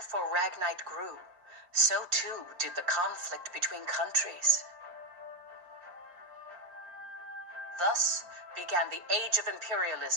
for Ragnite grew, so too did the conflict between countries. Thus began the Age of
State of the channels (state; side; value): late; left; 4.7 ms